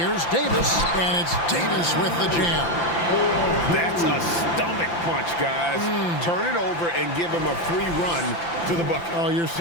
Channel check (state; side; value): late; right; 5.9 ms